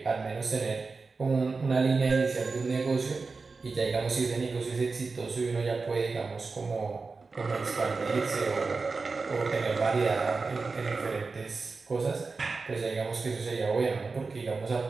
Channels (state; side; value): quieter; left; 4.2 dB